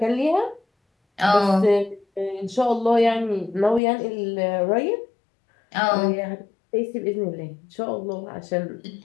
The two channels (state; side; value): drops out; right; at 3.8 s